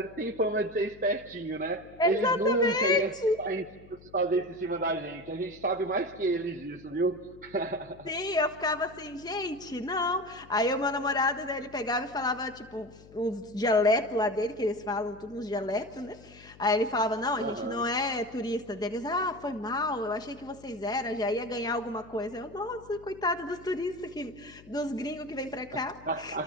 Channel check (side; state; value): left; noise; hum, 21 dB below the sound